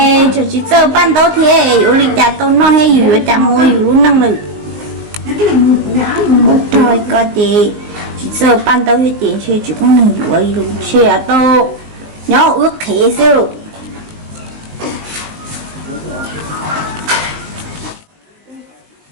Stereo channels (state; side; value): late; left; 19 ms